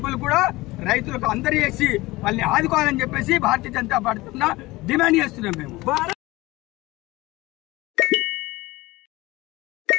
కూడా రైతులకు అందరూ చేసి వాళ్ళని ఆదుకోవాలని చెప్పేసి భారతీయ జనతా పార్టీ డిమాండ్ చేస్తున్నాం మేము.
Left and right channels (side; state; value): right; quieter; 20.2 dB